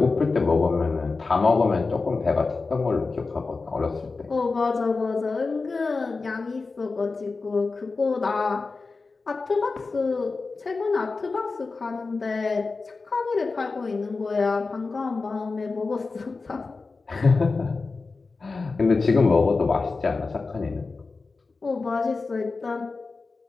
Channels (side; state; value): right; quieter; 4.0 dB